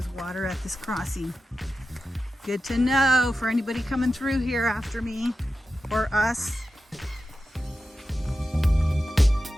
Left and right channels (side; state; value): both; normal; correlation 0.92